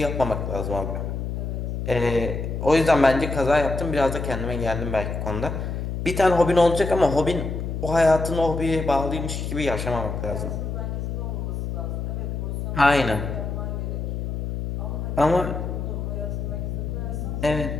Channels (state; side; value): noise; left; hum, 4 dB below the sound